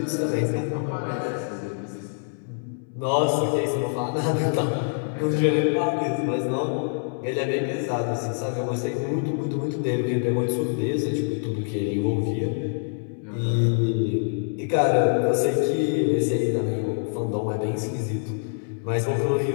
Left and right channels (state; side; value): silent; right; 62 dB below the other